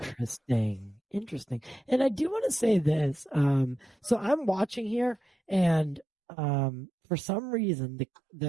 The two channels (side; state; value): left; drops out; at 6.1 s